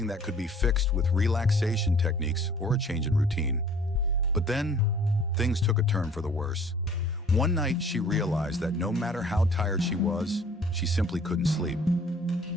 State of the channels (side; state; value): both; normal; correlation 0.53